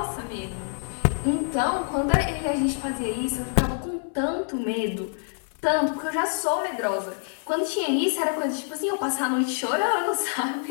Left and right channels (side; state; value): right; silent; digital silence